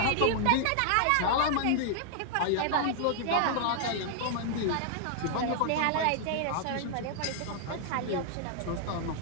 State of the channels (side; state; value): both; different; correlation -0.01